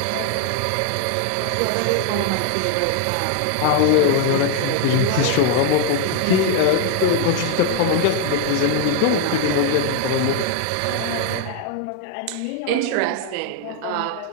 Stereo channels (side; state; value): both; different; correlation 0.00